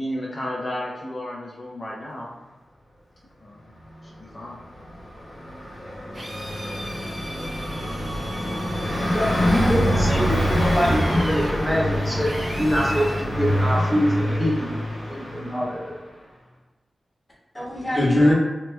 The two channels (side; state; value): both; normal; correlation 0.94